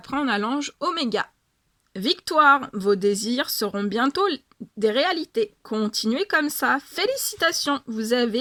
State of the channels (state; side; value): identical; both; correlation 1.00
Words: on a l'ange Oméga. Victoire, vos désirs seront bientôt des réalités. Continuez comme ça. Félicitations, vous